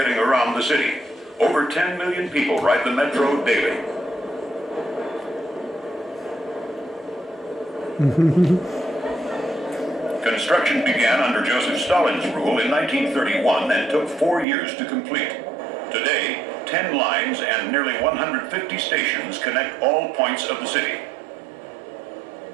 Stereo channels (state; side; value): drops out; left; at 14.5 s